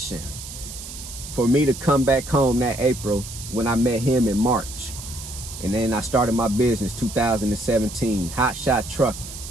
for me to come back home that April when I met him in March. And then I started my business 2017, Hotshot Trucking,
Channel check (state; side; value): noise; right; hiss, 12 dB below the sound